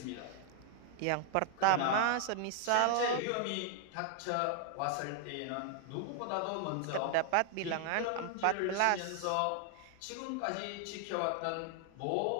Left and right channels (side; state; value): both; different; correlation 0.00